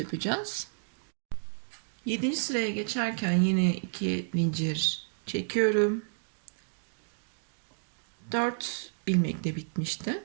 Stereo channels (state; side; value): silent; left; digital silence